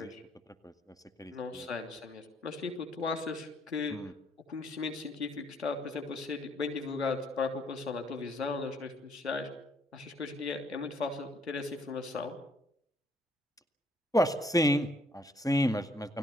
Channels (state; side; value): normal; both; correlation 0.67